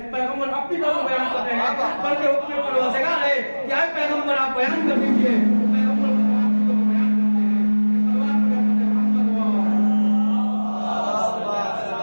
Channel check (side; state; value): both; inverted; correlation -1.00